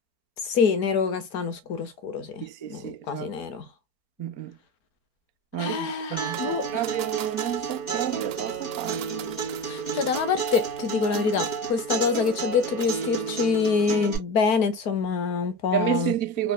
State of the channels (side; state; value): right; late; 4.4 ms